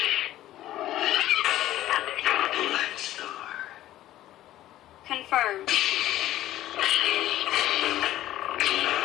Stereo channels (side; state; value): right; quieter; 14.0 dB